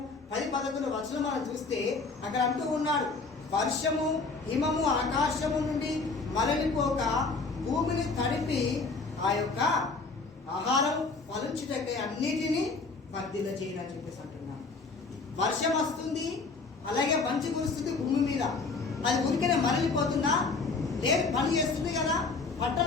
10-11 వచనం మనం చూస్తే అక్కడ అంటూ ఉన్నాడు, వర్షము హిమము ఆకాశము నుండి మరలిపోక భూమిని తడిపి ఆ యొక్క ఆహారం ఫలించుటకై అన్నిటినీ వర్ధిల్ల చేయని చెప్పేసి అంటున్నాను. వర్షం వస్తుంది, అలాగే మంచు కురుస్తుంది భూమి మీద, అది ఉరికనే మరలిపోతుందా? లేదు, పని చేస్తుంది కదా,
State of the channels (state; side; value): quieter; right; 4.1 dB